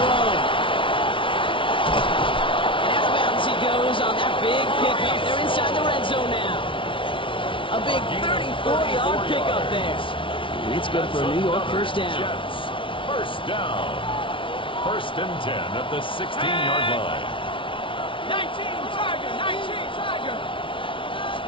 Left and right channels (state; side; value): late; right; 0.25 ms